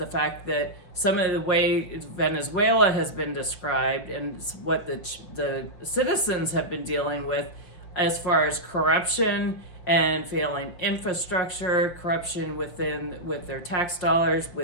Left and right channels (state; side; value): late; right; 5.9 ms